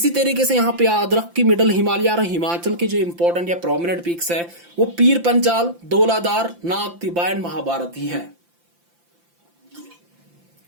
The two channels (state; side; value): late; left; 5.8 ms